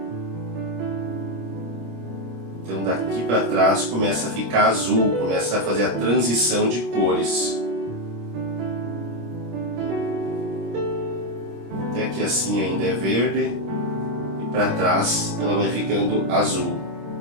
Então daqui para trás começa a ficar azul, começa a fazer a transição de cores. Até que assim ainda é verde e para trás ela vai ficando azul.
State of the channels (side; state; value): left; late; 26 ms